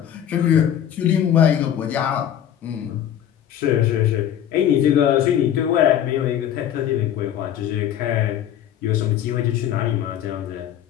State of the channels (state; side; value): quieter; right; 10.3 dB